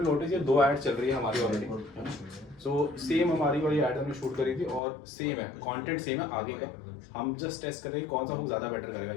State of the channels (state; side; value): drops out; right; at 4.8 s